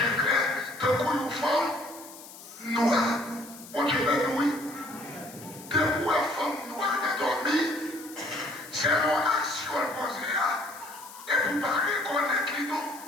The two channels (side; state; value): left; noise; hiss, 17 dB below the sound